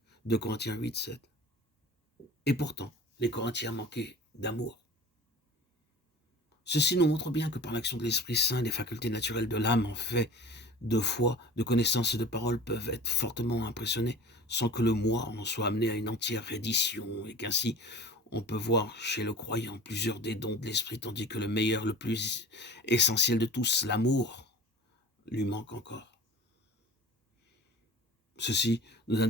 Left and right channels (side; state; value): both; normal; correlation 0.39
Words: 2 Corinthiens 8, 7. Et pourtant, les Corinthiens manquaient d'amour. Ceci nous montre bien que par l'action de l'Esprit Saint, les facultés naturelles de l'âme en fait de foi, de connaissance et de parole peuvent être fortement impressionnées sans que le moi en soit amené à une entière reddition et qu'ainsi on peut voir chez le croyant plusieurs des dons de l'Esprit tandis que le meilleur, le plus essentiel de tous, l'amour, lui manque encore. Ceci nous